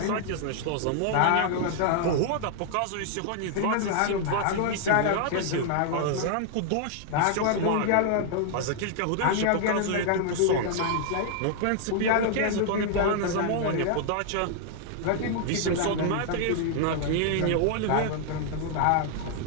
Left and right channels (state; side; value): different; both; correlation -0.01